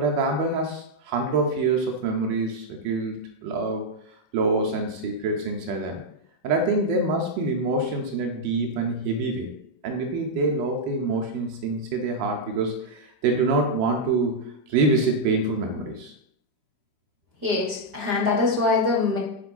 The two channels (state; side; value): late; left; 5.0 ms